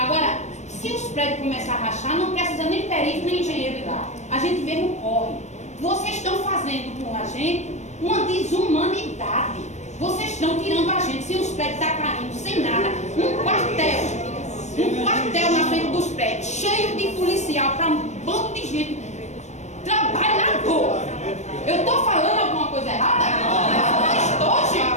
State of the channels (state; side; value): late; right; 0.34 ms